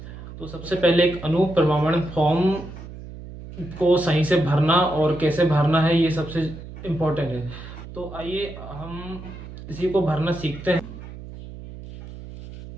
तो सबसे पहले एक अनुप्रमाणन फॉर्म को सही से भरना और कैसे भरना है, ये सबसे इम्पोर्टेंट है। तो आइए हम इसी को भरना सीखते हैं।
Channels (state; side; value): noise; right; hum, 13 dB below the sound